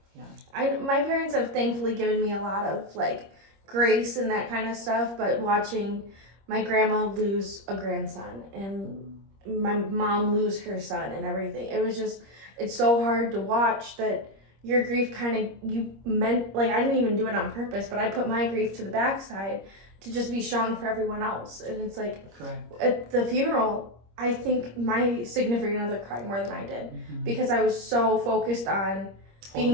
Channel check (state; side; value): late; left; 25 ms